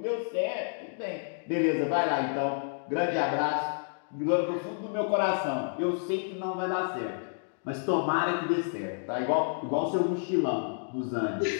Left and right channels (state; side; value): silent; right; digital silence